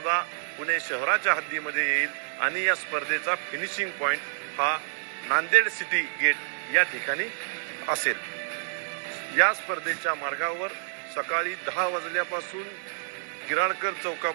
पुणे शहराच्या हद्दीमध्ये येईल आणि या स्पर्धेचा फिनिशिंग पॉइंट हा नांदेड सिटी गेट या ठिकाणी असेल। या स्पर्धेच्या मार्गावर सकाळी 10 वाजल्यापासून गिराळकर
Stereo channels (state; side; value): silent; left; 59 dB below the other